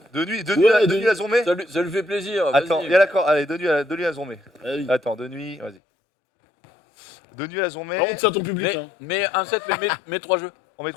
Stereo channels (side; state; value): right; drops out; at 5.8 s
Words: De nuit à Zombé? Ça lui fait plaisir. Attends, il y a l'accord. Allez, de nuit à Zombé. Ah oui. Attends, de nuit, vas-y. De nuit à Zombé. Par contre, c'est à ton public. Hein. Mais un set, mais 3 jeux. On